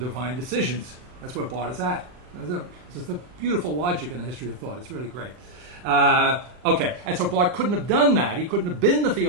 decisions. That's where Barth is at. This is the beautiful logic in the history of thought. It's really great. Okay, and so Barth couldn't have done that. He couldn't have been the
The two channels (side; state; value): left; late; 39 ms